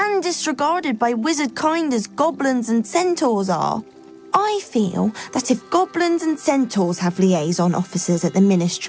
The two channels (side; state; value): both; identical; correlation 1.00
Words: disregarded by wizard kind as goblins and centaurs are. I feel that if goblins and centaurs have liaison officers at the